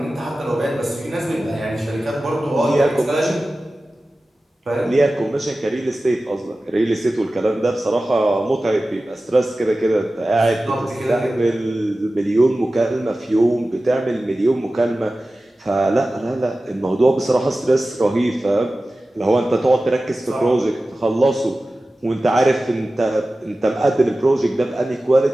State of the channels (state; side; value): normal; both; correlation 0.96